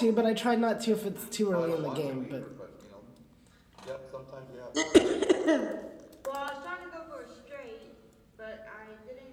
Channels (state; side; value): identical; both; correlation 1.00